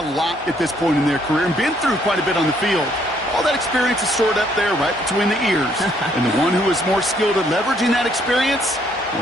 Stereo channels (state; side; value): normal; both; correlation 0.68